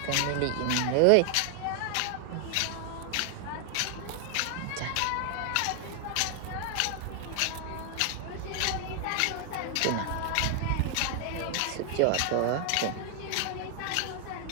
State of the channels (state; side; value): different; both; correlation 0.00